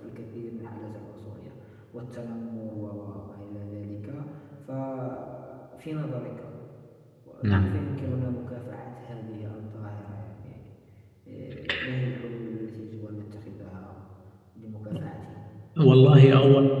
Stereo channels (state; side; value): identical; both; correlation 1.00